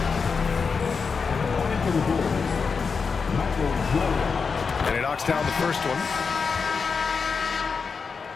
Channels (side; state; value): right; quieter; 5.3 dB